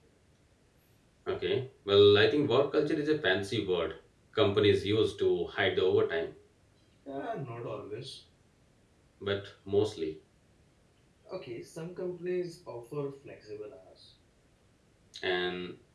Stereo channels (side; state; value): both; identical; correlation 1.00